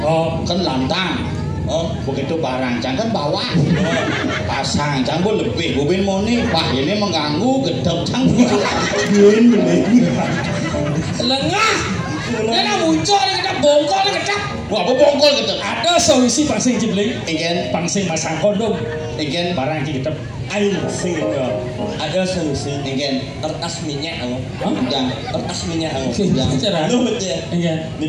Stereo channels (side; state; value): both; identical; correlation 1.00